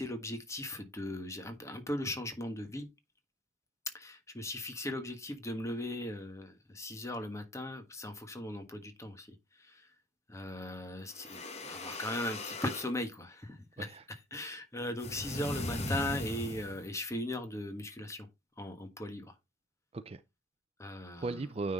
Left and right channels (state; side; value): normal; both; correlation 0.54